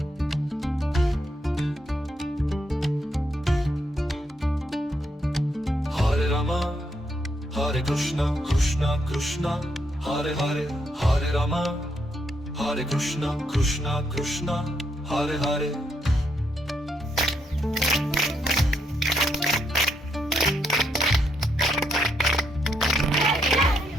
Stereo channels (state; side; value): normal; both; correlation 0.77